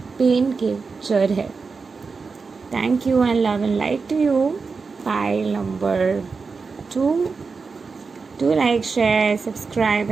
पेन के जड़ है। Thank you and love and light to you. Pile number 2. Do like, share, subscribe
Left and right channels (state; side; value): quieter; left; 4.7 dB